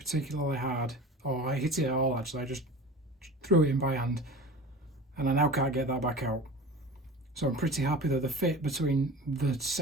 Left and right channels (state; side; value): normal; both; correlation 0.35